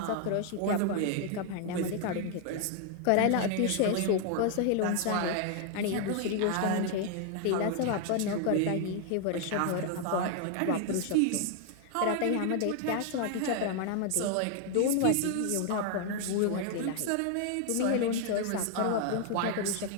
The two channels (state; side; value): different; both; correlation 0.00